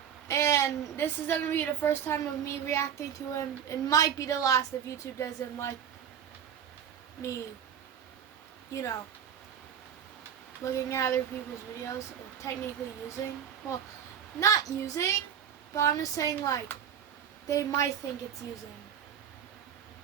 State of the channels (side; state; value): left; quieter; 8.6 dB